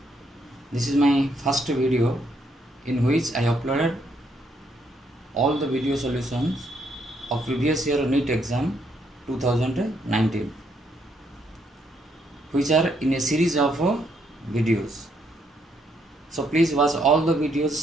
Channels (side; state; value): both; normal; correlation 0.73